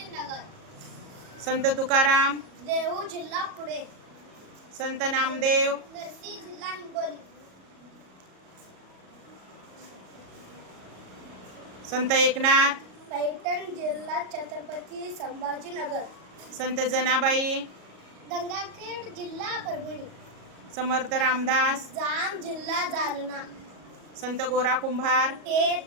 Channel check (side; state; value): left; late; 37 ms